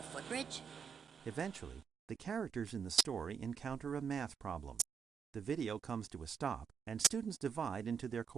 footbridge? Eventually, the characters in the story encounter a math problem. The video comes to a stop, and students divide into their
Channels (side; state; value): left; quieter; 6.8 dB